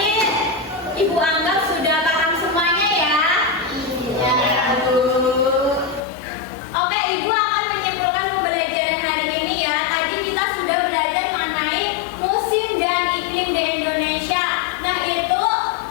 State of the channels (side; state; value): right; drops out; at 6.0 s